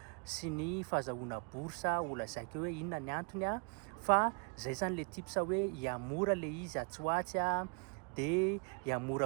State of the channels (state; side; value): quieter; left; 37.7 dB